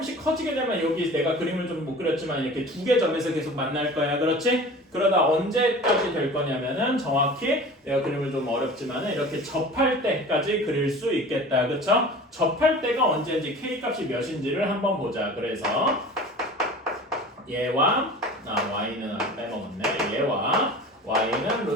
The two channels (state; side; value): normal; both; correlation 0.39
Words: 커지게 되면 여기 내가 그림을 좀 못 그렸지만 이렇게 두 개 점에서 계속 만날 거야. 그렇지? 그러다 언제까지 될 거냐면은 정확히 내가 그림을 좀 어렵지만은 이렇게 접할 때까지 그릴 수 있겠다. 그쵸? 접할 때가 언제인지 k 값이 몇인지를 한번 보자. 그래서 얘와 y는 빼먹었네. 얘와 y는